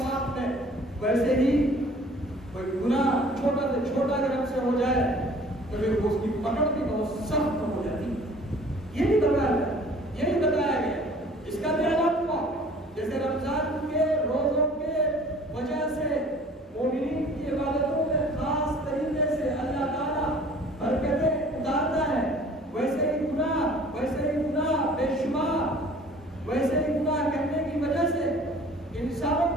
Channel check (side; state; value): both; normal; correlation 0.51